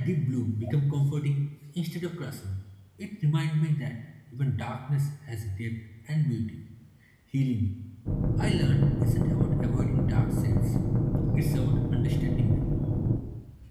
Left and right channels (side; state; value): both; identical; correlation 1.00